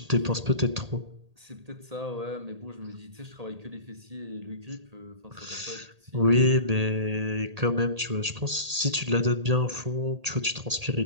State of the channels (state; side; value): late; left; 1.8 ms